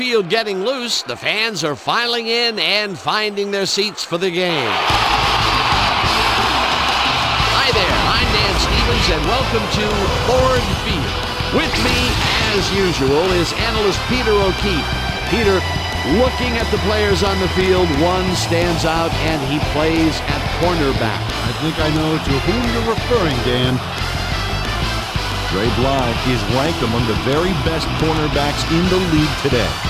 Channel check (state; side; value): identical; both; correlation 1.00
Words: getting loose, the fans are filing in and finding their seats for the game. Hi there, I'm Dan Stevens, and welcome to Ford Field. With me, as usual, is analyst Peter O'Keefe. Peter, looking at the players on the field, one stands out, and he plays at cornerback. I think I know to whom you're referring, Dan. Dre Bly is ranked among the very best cornerbacks in the league today.